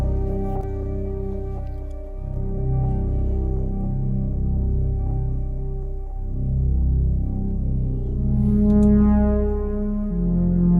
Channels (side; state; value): both; identical; correlation 1.00